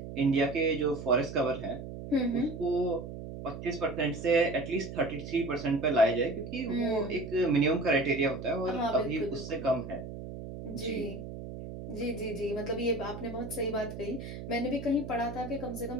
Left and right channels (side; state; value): right; noise; hum, 9 dB below the sound